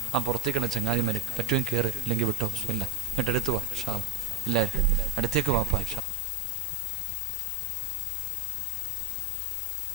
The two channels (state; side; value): drops out; right; at 6.0 s